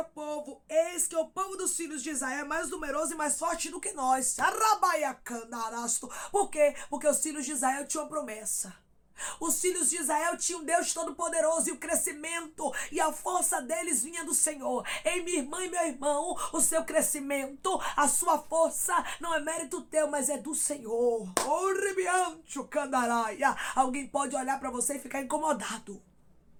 povo: Eis que o povo dos filhos de Israel é mais numeroso e mais forte do que nós. Por quê? Porque os filhos de Israel tinham uma promessa. Os filhos de Israel tinham um Deus Todo-Poderoso e o crescimento e a força deles vinha do Senhor. Ei, minha irmã e meu irmão, o seu crescimento, a sua força não é mérito teu, mas é do Senhor. Alguém pode olhar para você e ficar incomodado,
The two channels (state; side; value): identical; both; correlation 1.00